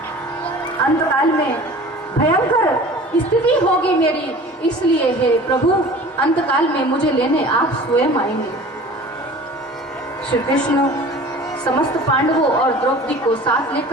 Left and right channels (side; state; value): both; normal; correlation 0.43